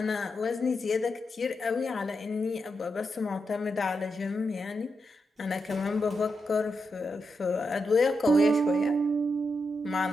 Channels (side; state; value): both; normal; correlation 0.85